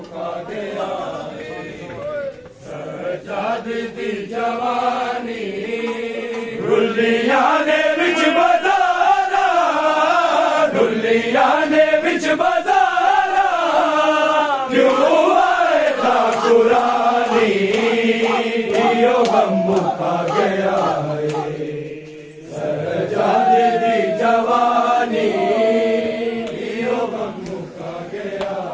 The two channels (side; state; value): both; identical; correlation 1.00